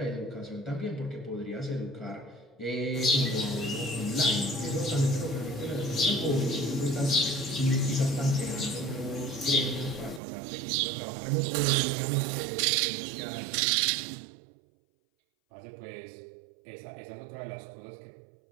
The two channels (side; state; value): left; drops out; at 10.2 s